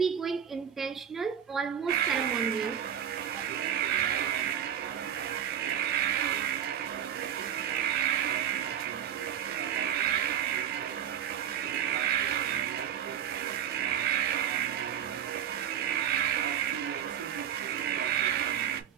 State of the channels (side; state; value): left; quieter; 9.5 dB